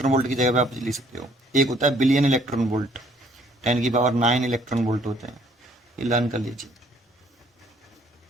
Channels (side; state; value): both; normal; correlation 0.62